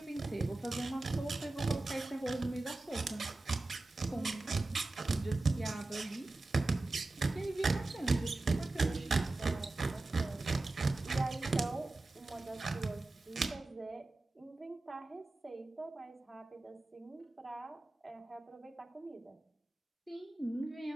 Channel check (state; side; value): quieter; left; 3.0 dB